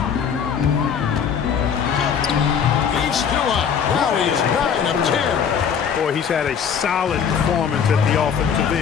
He's still up. Now he's 9 of 10. Boy, he's had a solid performance at the offensive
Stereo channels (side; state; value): right; quieter; 7.3 dB